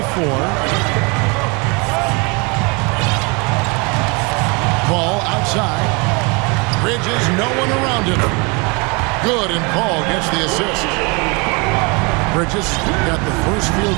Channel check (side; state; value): left; quieter; 29.9 dB